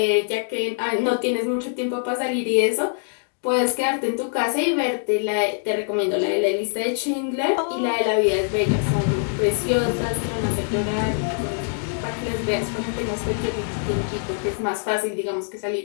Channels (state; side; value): silent; right; digital silence